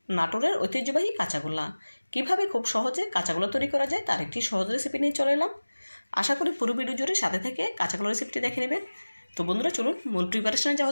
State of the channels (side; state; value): both; inverted; correlation -1.00